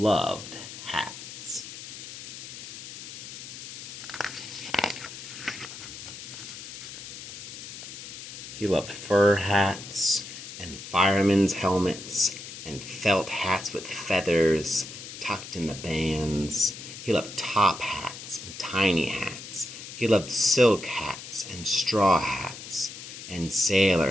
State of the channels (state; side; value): noise; left; hiss, 12 dB below the sound